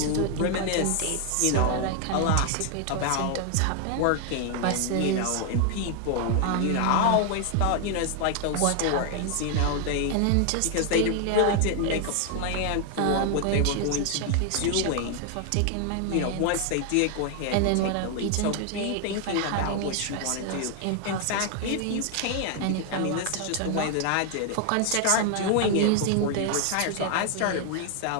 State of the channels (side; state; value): both; different; correlation 0.00